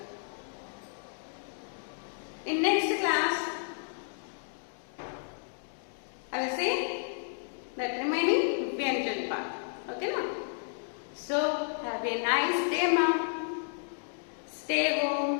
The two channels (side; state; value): right; silent; digital silence